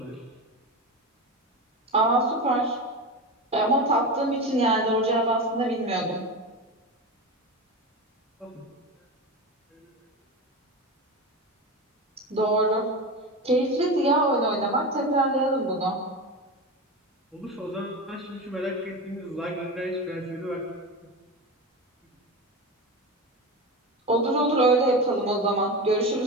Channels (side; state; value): both; normal; correlation 0.23